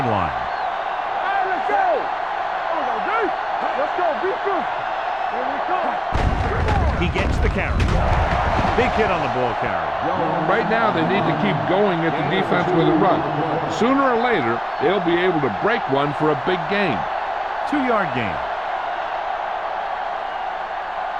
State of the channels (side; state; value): both; identical; correlation 1.00